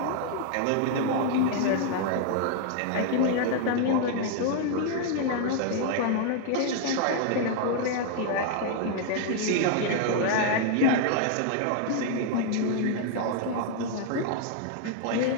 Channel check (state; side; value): different; both; correlation 0.00